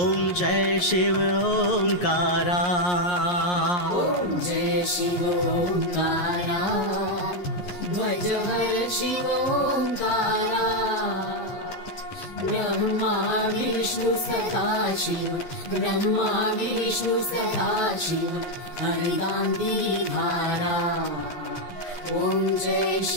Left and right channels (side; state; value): right; late; 11 ms